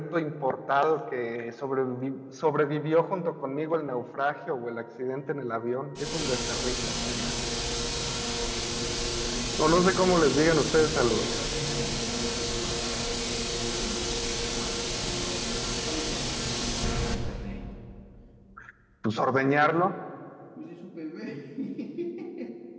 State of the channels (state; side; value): identical; both; correlation 1.00